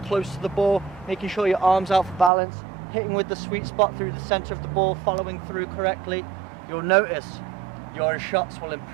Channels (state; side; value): drops out; left; at 2.3 s